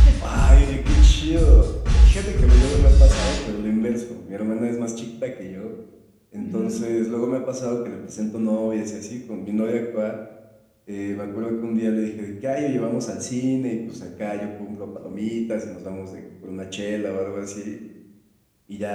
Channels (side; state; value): both; identical; correlation 1.00